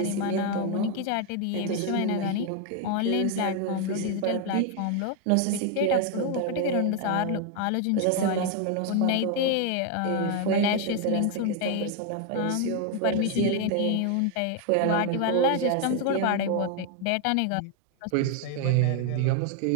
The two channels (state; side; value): different; both; correlation 0.01